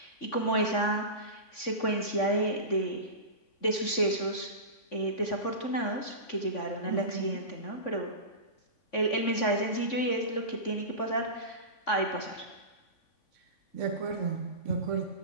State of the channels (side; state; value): right; late; 3.5 ms